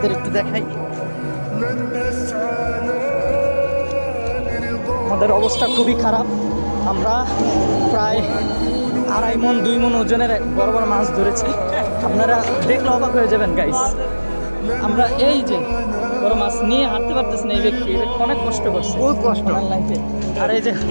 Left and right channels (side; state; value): both; inverted; correlation -1.00